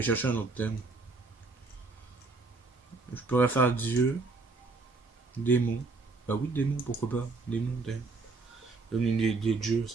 chercher un autre thème. Je pourrais faire Dieu. Démon. Bah oui, démon, pourquoi pas. Démon, thème. Comme une des dieux,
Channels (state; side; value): quieter; left; 3.8 dB